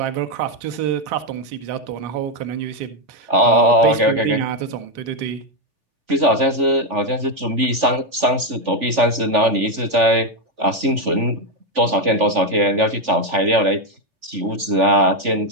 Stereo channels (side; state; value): left; late; 3.4 ms